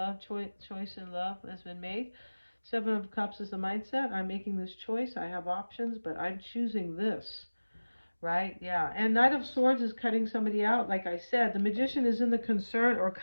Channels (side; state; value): both; inverted; correlation -1.00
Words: choice in love has been made. Seven of Cups is the mindset. I'm making this choice. I have options, but I'm choosing this. Right? Yeah. And Knight of Swords is cutting somebody out. Like I said, the Magician is in the concern or